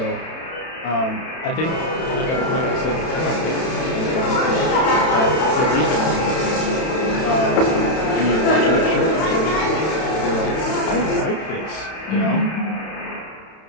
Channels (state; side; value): late; right; 31 ms